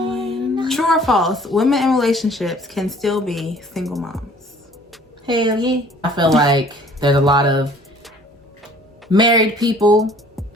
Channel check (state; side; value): normal; both; correlation 0.53